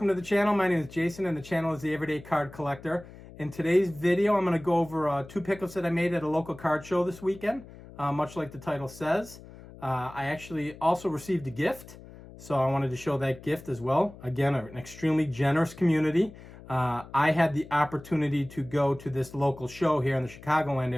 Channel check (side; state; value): left; noise; hum, 18 dB below the sound